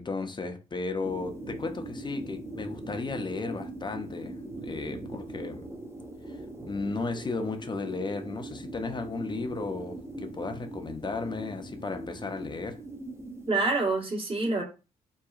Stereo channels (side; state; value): both; normal; correlation 0.63